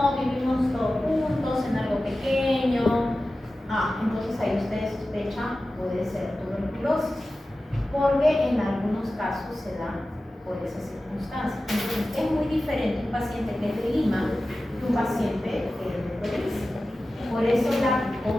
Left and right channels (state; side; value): normal; both; correlation 0.95